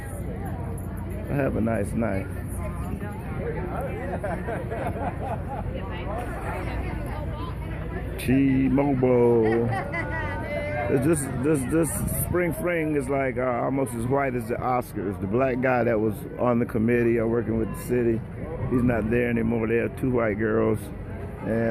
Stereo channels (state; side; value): identical; both; correlation 1.00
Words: I have a nice knife. T-Mobile. This spring fling is like almost as white as the Oscars. The black guy that was on the committee or working with the city, he's not there anymore. There are 2 white girls